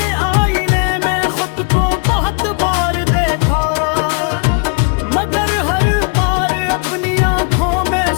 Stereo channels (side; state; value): right; quieter; 37.5 dB